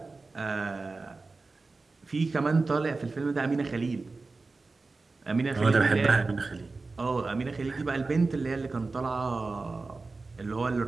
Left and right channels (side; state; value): left; quieter; 3.7 dB